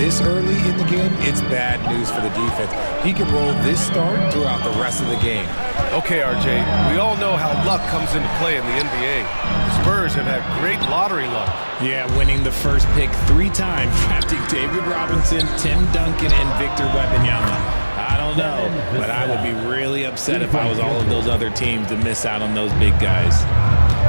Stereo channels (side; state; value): both; inverted; correlation -1.00